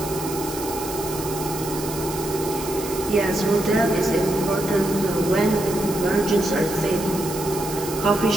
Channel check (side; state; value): right; noise; hiss, 10 dB below the sound